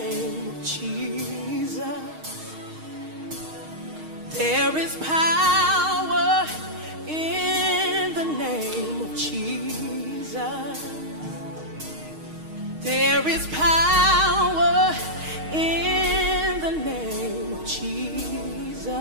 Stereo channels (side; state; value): left; late; 6.4 ms